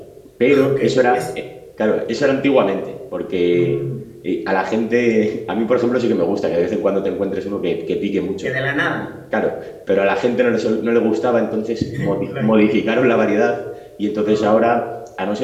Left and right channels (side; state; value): both; identical; correlation 1.00